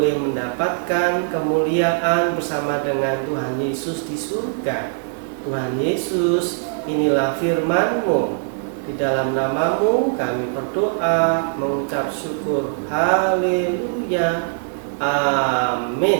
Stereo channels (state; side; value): silent; left; digital silence